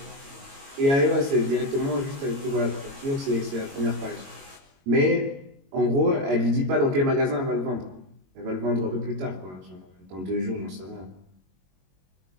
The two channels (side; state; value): left; late; 22 ms